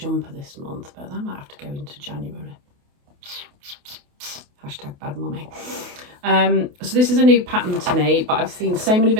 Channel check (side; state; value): left; late; 28 ms